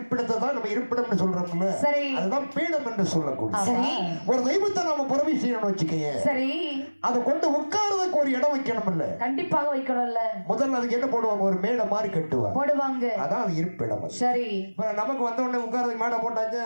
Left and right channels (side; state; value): both; inverted; correlation -1.00